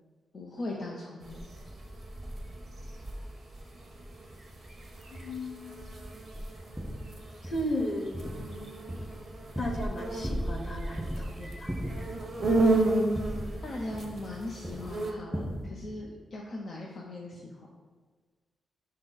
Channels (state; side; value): normal; both; correlation 0.80